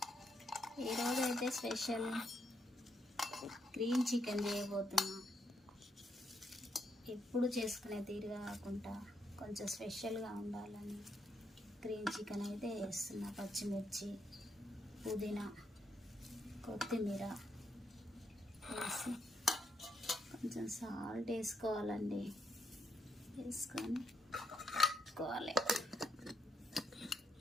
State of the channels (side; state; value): both; normal; correlation 0.77